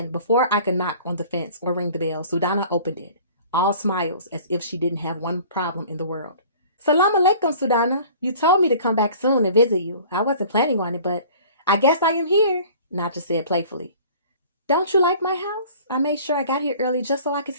before I could knock on the fence or ring the bell, SUDANA opened it, all smiles as if she didn't have one problem in the world. "Salam alaikum, SUDANA. You told me to come back soon and visit you. I wasn't planning on it, but I guess I am here," Naja said playfully. "Don't you like my house? I made sure I got here early just so I could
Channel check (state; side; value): inverted; both; correlation -0.47